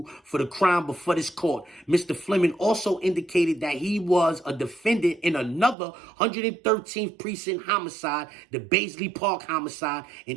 for the crime before this court. Mr. Fleming also indicated that he was a defendant in another 113th precinct homicide, the Baisley Park homicide,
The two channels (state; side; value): drops out; left; at 5.8 s